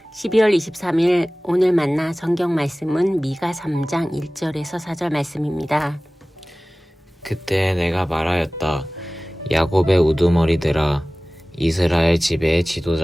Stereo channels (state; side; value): normal; both; correlation 0.98